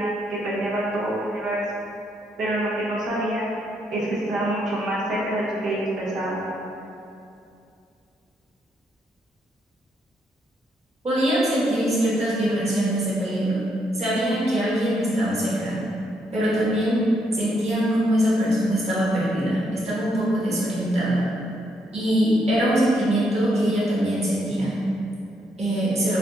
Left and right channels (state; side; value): normal; both; correlation 0.76